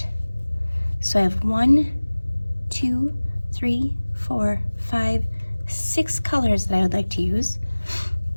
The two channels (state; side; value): inverted; both; correlation -1.00